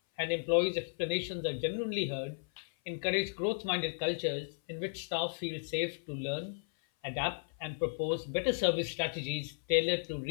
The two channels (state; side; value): silent; right; 55 dB below the other